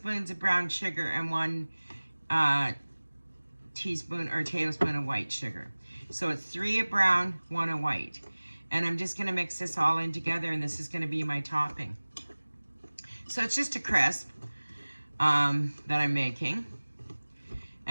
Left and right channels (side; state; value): both; inverted; correlation -1.00